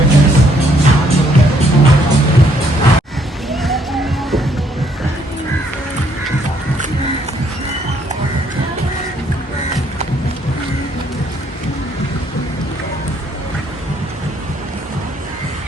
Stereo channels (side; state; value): both; normal; correlation 0.68